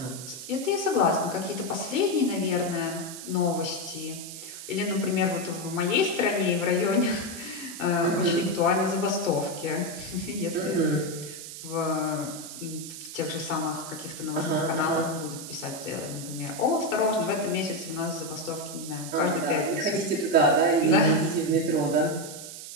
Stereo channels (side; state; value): right; noise; hiss, 11 dB below the sound